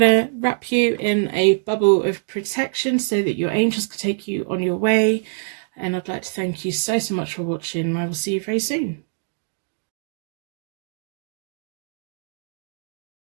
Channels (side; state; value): left; silent; digital silence